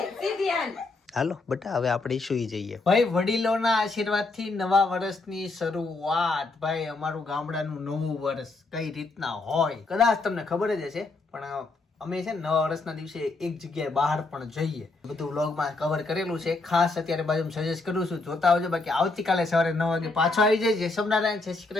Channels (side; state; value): right; quieter; 3.5 dB